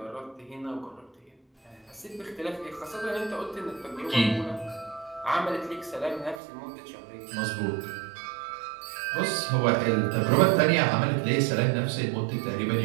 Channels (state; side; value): drops out; left; at 6.4 s